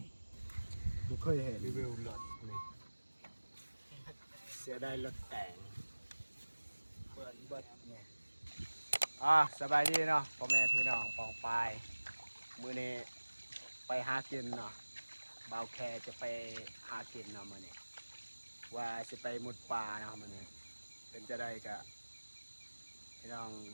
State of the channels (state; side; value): inverted; both; correlation -1.00